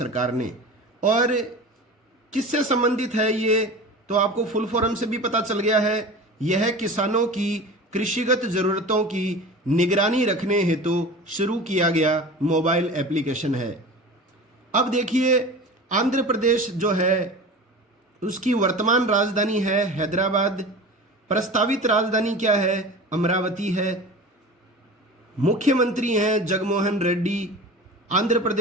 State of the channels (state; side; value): normal; both; correlation 0.35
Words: ने। और किससे संबंधित है ये, तो आपको फुल फॉर्म से भी पता चल गया है। यह किसानों की कृषिगत जरूरतों की निगरानी रखने हेतु शुरू किया गया मोबाइल एप्लीकेशन है। अब देखिए, आंध्र प्रदेश जो है उसकी वर्तमान राजधानी है हैदराबाद, प्रस्तावित राजधानी क्या है? अमरावती है। मुख्यमंत्री हैं जगनमोहन रेड्डी। आंध्र